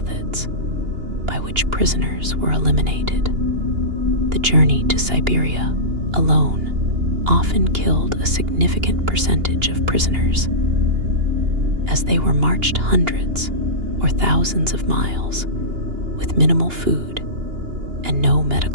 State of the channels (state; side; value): late; left; 2.8 ms